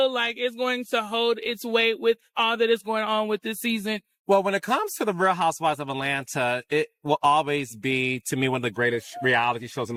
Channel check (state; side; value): identical; both; correlation 1.00